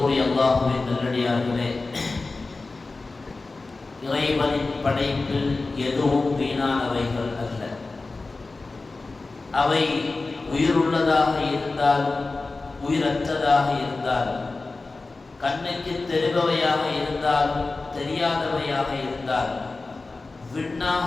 அல்லாஹ்வின் நல்லடியார்களே, இறைவனின் படைப்பில் எதுவும் வீணானவைகள் அல்ல. அவை உயிருள்ளதாக இருந்தாலும் உயிரற்றதாக இருந்தாலும், கண்ணுக்கு தெரிபவையாக இருந்தாலும் தெரியாதவையாக இருந்தாலும்,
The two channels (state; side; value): quieter; right; 3.6 dB